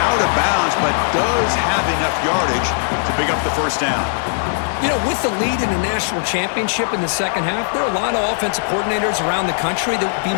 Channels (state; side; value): silent; right; digital silence